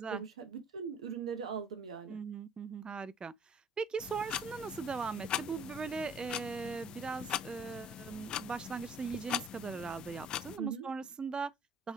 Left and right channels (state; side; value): normal; both; correlation 0.54